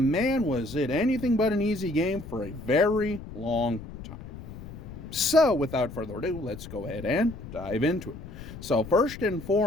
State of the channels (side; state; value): left; noise; rumble, 13 dB below the sound